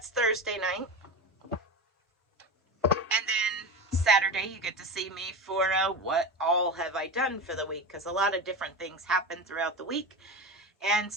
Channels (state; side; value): normal; both; correlation 0.23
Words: Thursday night. And then Saturday you get to see me for what all have I done for the week, because a lot of different things happen throughout the week. And